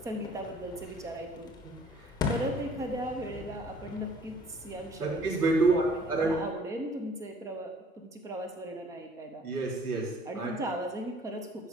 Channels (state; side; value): normal; both; correlation 0.56